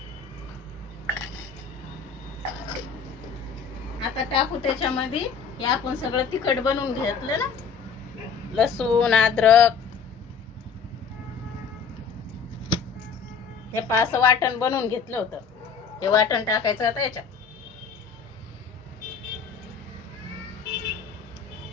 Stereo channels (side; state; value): right; quieter; 6.0 dB